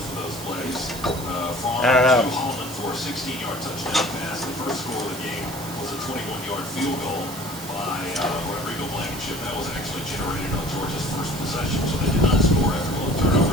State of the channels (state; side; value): noise; right; hiss, 12 dB below the sound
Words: of those plays. Farm to Holland for a 16-yard touchdown pass. The first score of the game was a 21-yard field goal by Rodrigo Blankenship. That was actually generated on Georgia's first possession, so they did not score after both